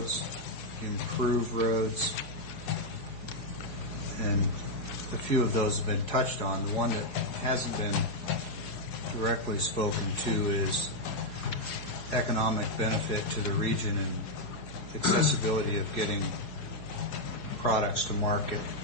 improve roads, and a few of those have been touched on. The one that hasn't been directly spoken to is economic benefit to the region and accessibility of getting products to market.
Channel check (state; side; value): late; right; 4.8 ms